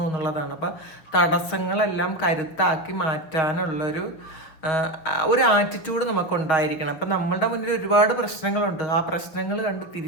എന്നുള്ളതാണ്. അപ്പം തടസ്സങ്ങളെല്ലാം കരുത്താക്കി മാറ്റാനുള്ളൊരു ആറ്റിറ്റ്യൂഡ് നമുക്കുണ്ടായിരിക്കണം. അപ്പം നമ്മളുടെ മുന്നിൽ ഒരുപാട് പ്രശ്നങ്ങളുണ്ട്. ആ പ്രശ്നങ്ങൾ കണ്ട്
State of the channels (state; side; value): late; right; 6.4 ms